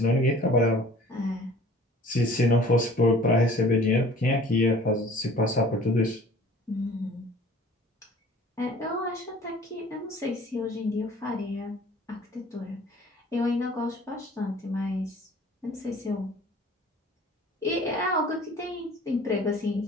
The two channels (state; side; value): normal; both; correlation 0.48